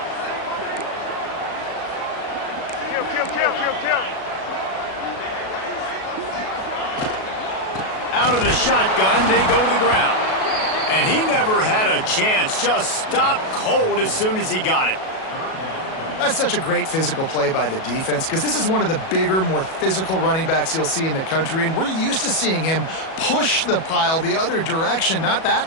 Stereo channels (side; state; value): right; late; 37 ms